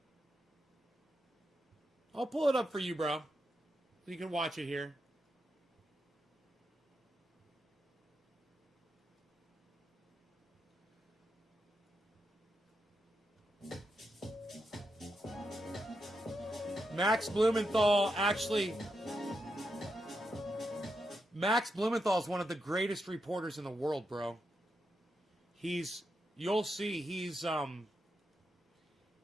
I'll pull it up for you, bro. So you can watch it here. Max Blumenthal is one of the greatest reporters in the world, bro. You'll see, he's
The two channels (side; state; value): both; normal; correlation 0.84